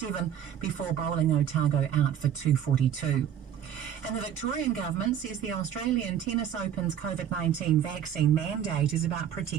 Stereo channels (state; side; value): quieter; left; 9.4 dB